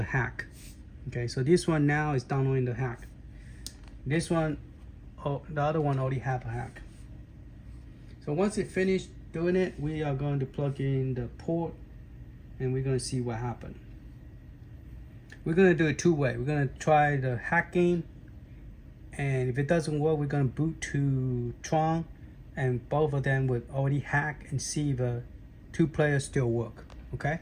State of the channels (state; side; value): identical; both; correlation 1.00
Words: hack. Okay. So this one now is downloading the hack. This one, oh, the other one already have a hack. So once it finished doing it, we are going to plug in the port and we're going to see what happened. We're going to do it two-way. We're going to try the hack game, and if it doesn't work, we're going to boot to Tron, and both of them would already hack and see if the two players still work. Okay?